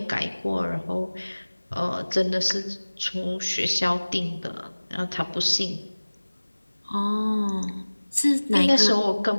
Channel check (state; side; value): inverted; both; correlation -1.00